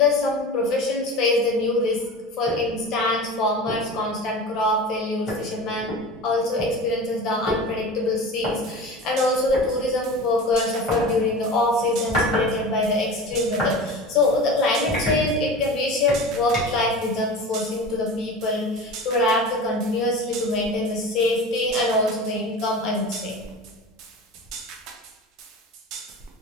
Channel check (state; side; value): normal; both; correlation 0.33